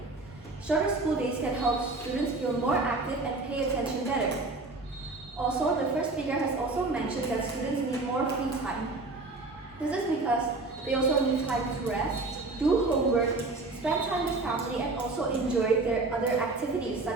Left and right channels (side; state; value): left; quieter; 3.3 dB